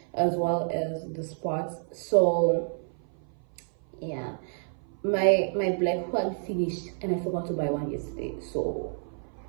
as well as the spots. So yeah, my black one finished and I forgot to buy one yesterday, so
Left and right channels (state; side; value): silent; left; 56 dB below the other